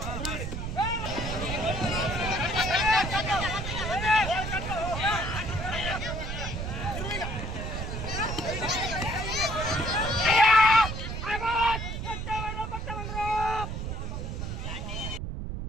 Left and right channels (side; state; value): right; noise; rumble, 4 dB below the sound